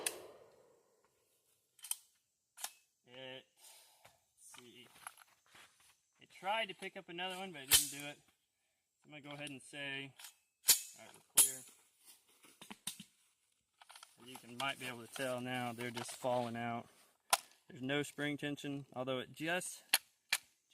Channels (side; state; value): both; identical; correlation 1.00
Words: Let's see. It tried to pick up another one, but it didn't do it. I'm going to go ahead and say, alright, we're clear. As you might be able to tell now, they're just falling out. There's no spring tension, although it just